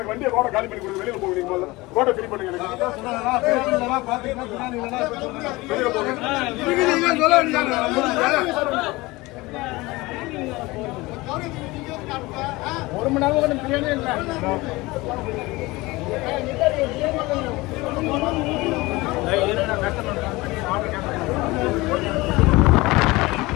வண்டியை ரோட காலி பண்ணி கொடுங்க. வெளியில போவீங்க. ரோட்டை ஃப்ரீ பண்ணுங்க. ஒரு மணி நேரம் பிரியாணி இல்லை.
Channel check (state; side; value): quieter; right; 21.5 dB